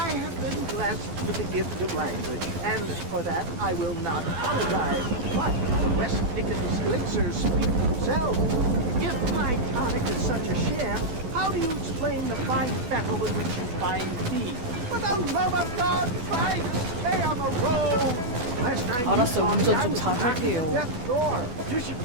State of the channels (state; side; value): late; left; 12 ms